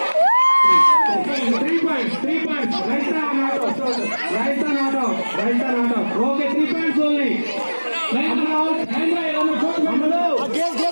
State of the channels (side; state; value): both; inverted; correlation -1.00